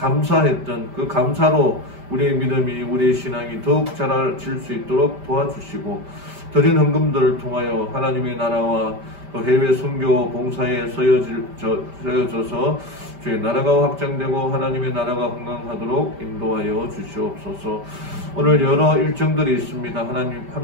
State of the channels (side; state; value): left; late; 5.1 ms